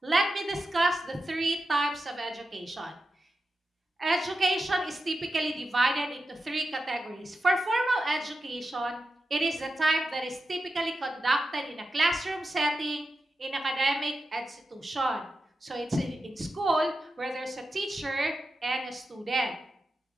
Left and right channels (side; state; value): both; normal; correlation 0.90